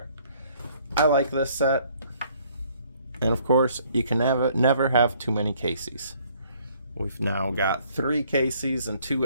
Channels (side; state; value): both; inverted; correlation -0.63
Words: I like this set. And of course, you can never have too many Caseys. We've now got 3 Caseys and 2